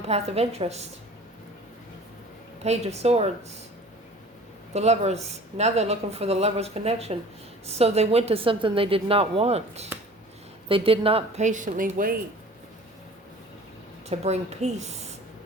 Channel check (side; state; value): both; normal; correlation 0.45